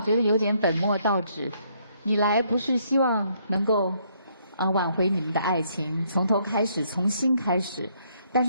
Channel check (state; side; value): inverted; both; correlation -0.70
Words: 得有点本末倒置。你来不是希望能够挽回你们的爱情，从头开始，从新开始，但